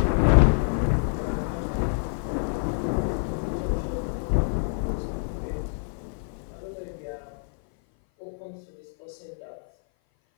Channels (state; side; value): silent; right; 57 dB below the other